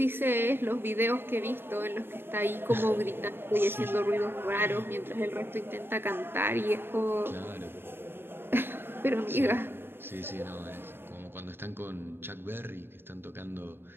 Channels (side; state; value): left; late; 0.11 ms